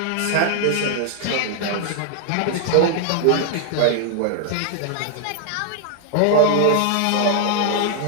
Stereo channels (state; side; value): different; both; correlation 0.00